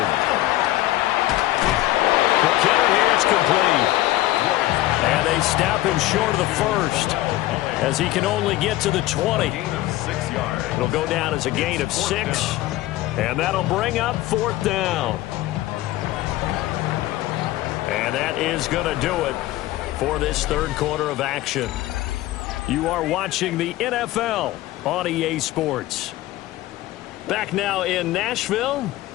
McKinnon here, it's complete. And they snap him short of the first as he can only get to the 20. It'll go down as a gain of 6. And that'll bring up 4th down. And that is going to do it for this 3rd quarter of action. You are watching the NFL on EA Sports. Back now in Nashville.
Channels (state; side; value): quieter; right; 16.2 dB